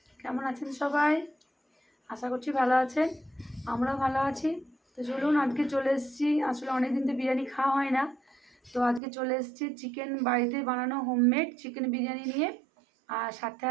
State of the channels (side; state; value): left; drops out; at 9.0 s